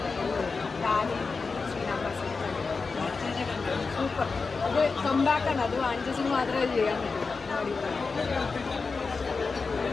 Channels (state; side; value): quieter; right; 4.5 dB